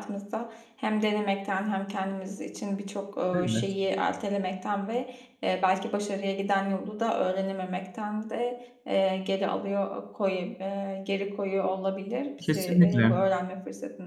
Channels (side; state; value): both; identical; correlation 1.00